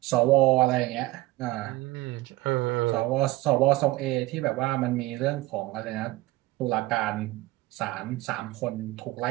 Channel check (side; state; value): left; quieter; 18.5 dB